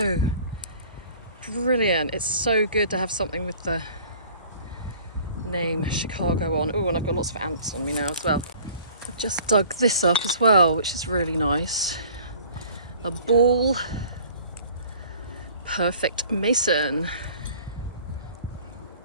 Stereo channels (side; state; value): both; inverted; correlation -0.50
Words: Brilliant. It's so good to have something with the name Chicago on. Oh, and I've got lots of ants on me now as well. I've just dug this up as well, which is really nice. A ball perfect mason.